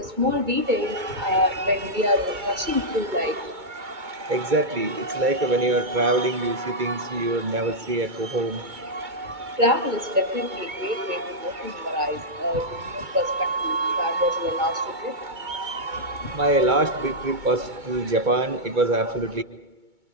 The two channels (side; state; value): left; late; 2.2 ms